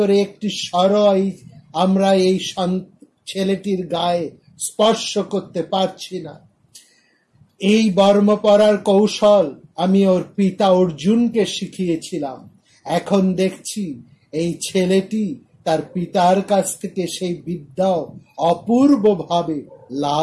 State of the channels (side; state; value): both; identical; correlation 1.00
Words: একটি সরই আমরা এই ছেলেটির গায়ে স্পর্শ করতে পারছি না। এই বর্ম পরার কৌশল আমি ওর পিতা অর্জুনকে শিখিয়েছিলাম। এখন দেখছি এই ছেলেটি তার পিতার কাছ থেকে সেই বিদ্যাও অপূর্বভাবে